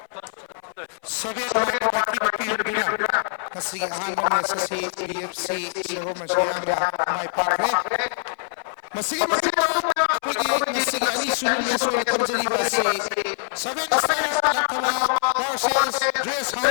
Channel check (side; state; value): right; silent; 62 dB below the other